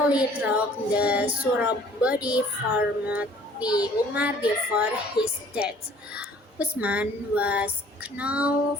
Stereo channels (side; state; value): both; normal; correlation 0.55